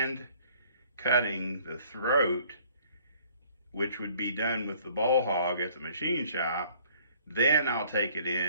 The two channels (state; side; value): inverted; both; correlation -0.58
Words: cutting the throat, which would be done with the bowl hog at the machine shop. Then I'll take it